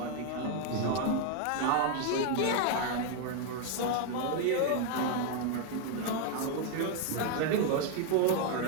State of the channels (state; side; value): different; both; correlation 0.01